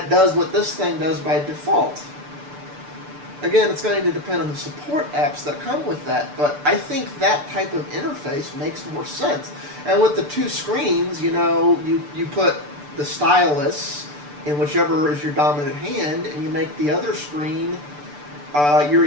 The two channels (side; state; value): left; late; 6.8 ms